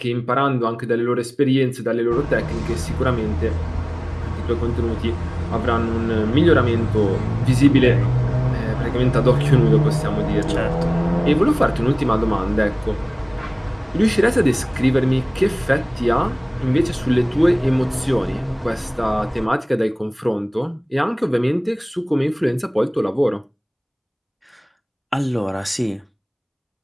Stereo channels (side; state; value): both; identical; correlation 1.00